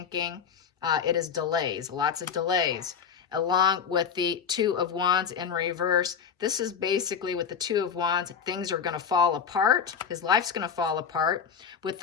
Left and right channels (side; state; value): right; quieter; 7.0 dB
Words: It is delays, lots of delays. along with the Two of Wands in reverse. This is basically with the Two of Wands, things are going to fall apart. His life's going to fall apart with